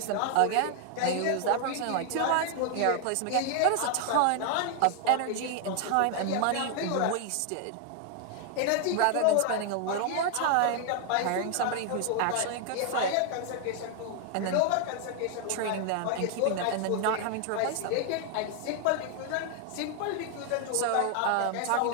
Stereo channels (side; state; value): both; different; correlation 0.00